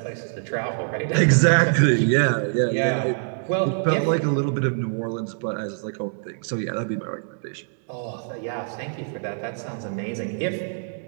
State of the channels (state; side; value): silent; left; digital silence